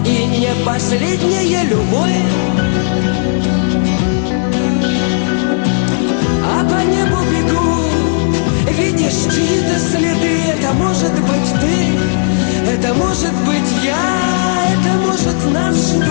И не последняя любовь, а по небу бегут, видишь чьи-то следы. Это может быть ты, это может быть я, это может нас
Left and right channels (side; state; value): right; silent; digital silence